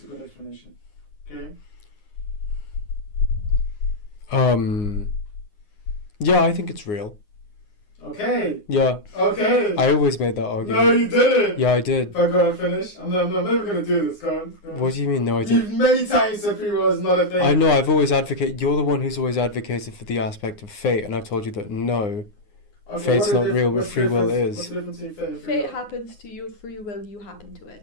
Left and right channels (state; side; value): late; right; 9.7 ms